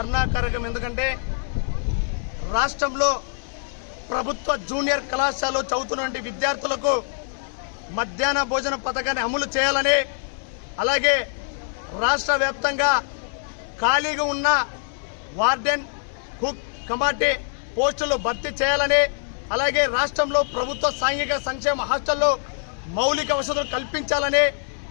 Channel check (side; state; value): right; silent; 63 dB below the other